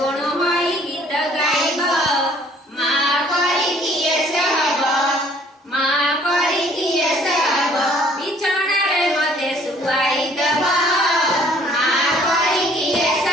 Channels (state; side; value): normal; both; correlation 0.58